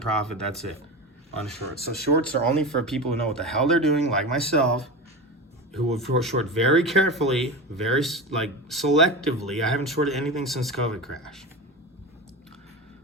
profit. That's it on shorts. So shorts are only for people who know what the hell they're doing, like myself, who will short very carefully, very selectively. I haven't shorted anything since COVID crash.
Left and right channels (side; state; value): both; normal; correlation 0.25